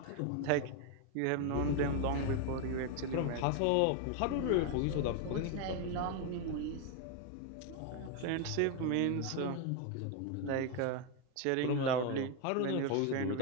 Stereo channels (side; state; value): both; different; correlation 0.01